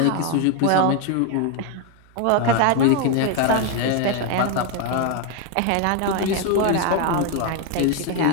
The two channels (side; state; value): both; different; correlation 0.01